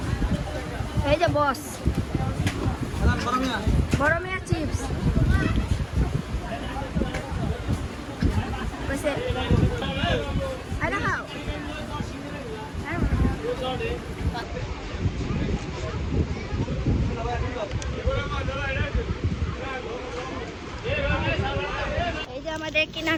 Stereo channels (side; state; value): both; identical; correlation 1.00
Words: এই যে বস, বড় মিয়া চিপস কইছে আরে খাও। এই যে আমাদের